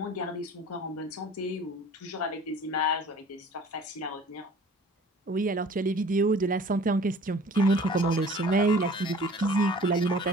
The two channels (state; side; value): normal; both; correlation 0.48